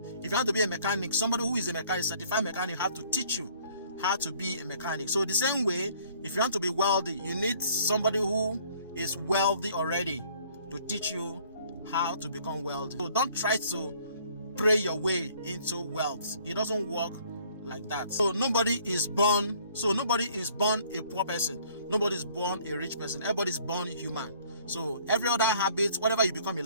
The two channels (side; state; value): both; inverted; correlation -0.58